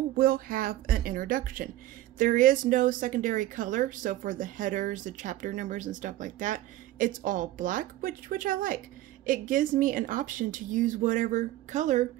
will have an introduction. There is no secondary color, so for the headers, the chapter numbers, and stuff like that, it's all black, which I like. It gives me an option to use whatever color,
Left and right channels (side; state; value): left; quieter; 15.1 dB